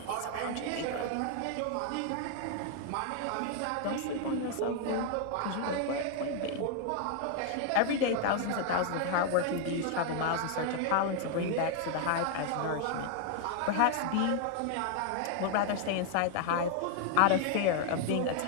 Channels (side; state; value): both; different; correlation 0.00